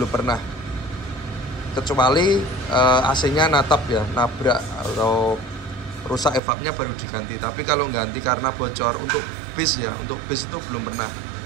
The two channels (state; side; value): drops out; left; at 6.4 s